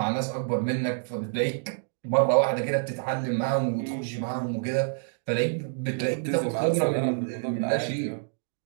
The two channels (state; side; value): silent; left; digital silence